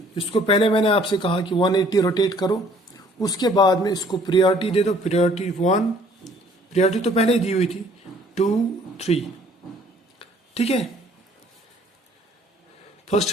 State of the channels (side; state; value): both; normal; correlation 0.58